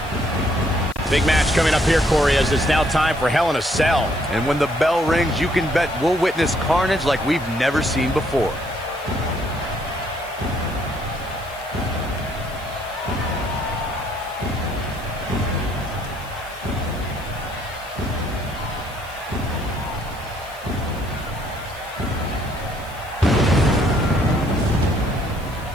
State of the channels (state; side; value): noise; left; hiss, 21 dB below the sound